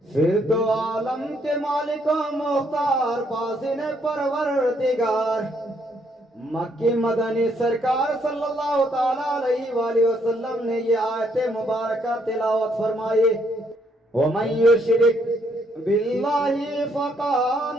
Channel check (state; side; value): normal; both; correlation 0.71